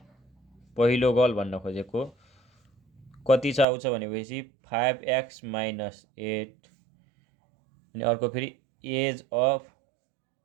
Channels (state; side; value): drops out; left; at 3.7 s